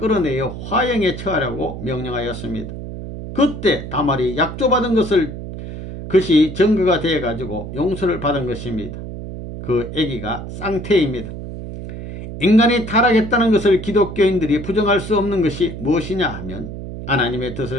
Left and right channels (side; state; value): right; noise; hum, 9 dB below the sound